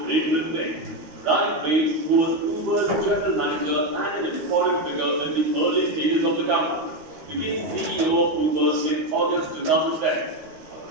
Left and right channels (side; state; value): left; late; 13 ms